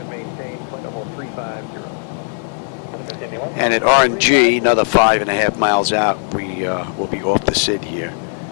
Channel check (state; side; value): silent; right; 67 dB below the other